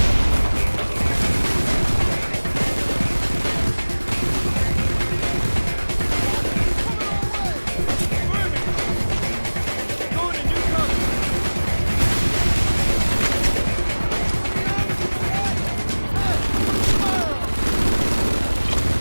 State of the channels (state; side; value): inverted; both; correlation -1.00